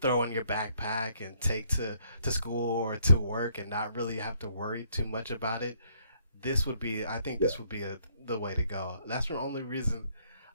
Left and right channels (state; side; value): inverted; both; correlation -0.68